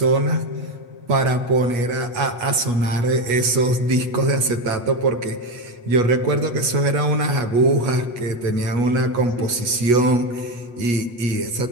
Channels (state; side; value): late; left; 8.4 ms